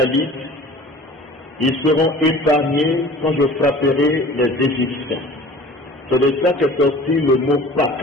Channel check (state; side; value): normal; both; correlation 0.44